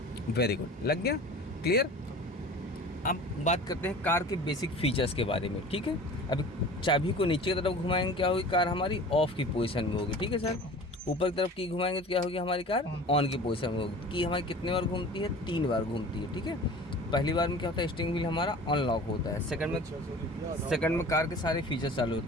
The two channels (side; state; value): both; normal; correlation 0.41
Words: वेरी गुड, लग गया, क्लियर। अब बात करते हैं कार के बेसिक फीचर्स के बारे में। ठीक है, अभी चाबी को नीचे की तरफ घुमाएंगे, क्या होगी? कार हमारी ऑफ की पोजीशन में होगी। ठीक है सर, ऊपर की तरफ की घुमाएंगे तो क्या होगी? हमारी कार ऑन की पोजीशन में होगी। की हमारी कितने बार घूमती है? 3 बार घूमती है। ठीक है, पहली बार में क्या होता है? स्टीयरिंग व्हील हमारा अनलॉक होता है। सेकंड में कार के सारे फीचर्स चालू